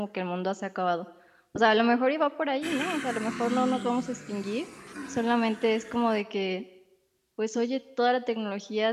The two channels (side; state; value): both; identical; correlation 1.00